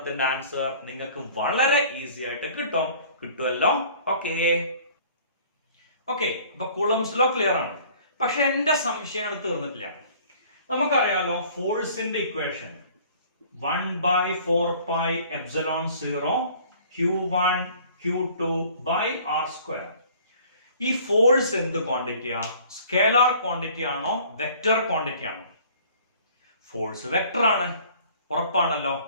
ആൻസർ നിങ്ങൾക്ക് വളരെ ഈസി ആയിട്ട് കിട്ടുമല്ലോ. ഓക്കെ, അപ്പൊ കൂളംസ് ലോ ക്ലിയർ ആണ്. പക്ഷെ എന്റെ സംശയം തീർന്നിട്ടില്ല. നമുക്കറിയാലോ ഫോഴ്സിന്റെ ഇക്വേഷൻ 1/4πε0 Q1 Q2 R². ഈ ഫോഴ്സ് എന്ത് ക്വാണ്ടിറ്റിയാ? സ്കേലാർ ക്വാണ്ടിറ്റി ആണോ വെക്റ്റർ ക്വാണ്ടിറ്റി ആണോ? ഫോഴ്സ് വെക്റ്റർ ആണ്, ഉറപ്പാണല്ലോ.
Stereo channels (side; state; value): both; inverted; correlation -0.52